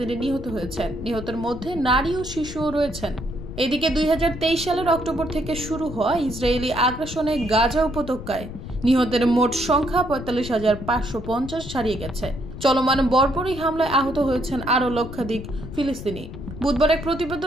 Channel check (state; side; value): noise; left; rumble, 10 dB below the sound